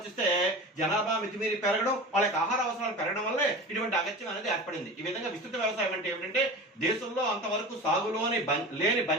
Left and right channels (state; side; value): normal; both; correlation 0.33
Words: జనాభా మితిమీరి పెరగడం, వాళ్ళ యొక్క ఆహార అవసరాలు పెరగడం వల్లే ఇటువంటి అగత్యం అనేది ఏర్పడింది. ఈ విధంగా విస్తృత వ్యవసాయం అంటే ఏమిటంటే దేశంలో అంతవరకు సాగులోని లేని